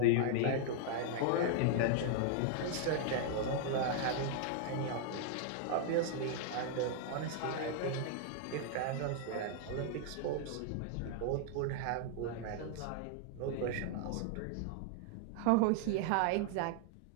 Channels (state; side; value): different; both; correlation 0.00